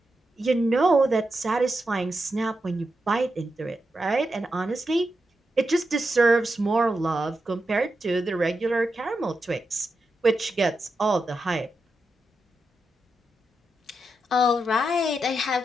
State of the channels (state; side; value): normal; both; correlation 0.87